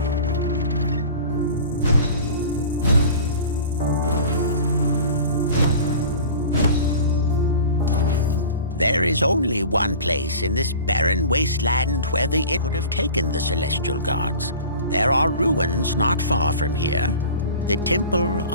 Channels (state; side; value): inverted; both; correlation -0.40